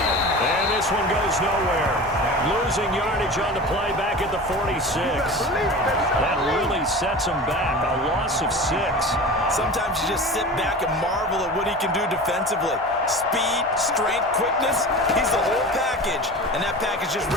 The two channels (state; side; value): normal; both; correlation 0.33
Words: this one goes nowhere. Losing yardage on the play back at the 46. That really sets him back. A loss of 6. Sometimes you just sit back and marvel at what he can do defensively. Speed, strength, quickness, he's the whole package. And that package just